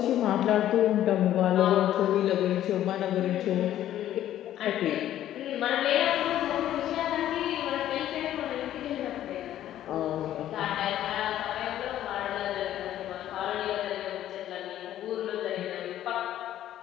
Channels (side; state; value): right; quieter; 12.3 dB